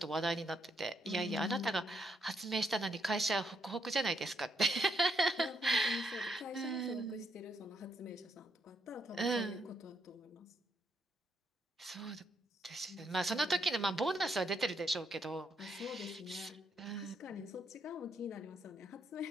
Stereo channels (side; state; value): both; normal; correlation 0.77